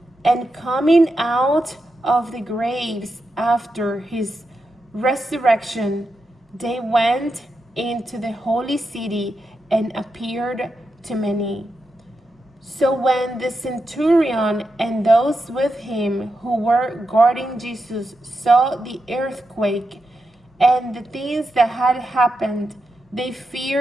And coming out of the graves after his resurrection, they went into the holy city and appeared to many. So when the centurion and those with him who were guarding Jesus saw the earthquake and the things that had happened, they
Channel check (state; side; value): normal; both; correlation 0.87